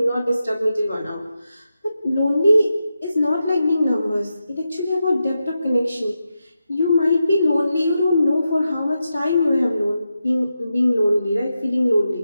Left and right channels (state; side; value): inverted; both; correlation -0.89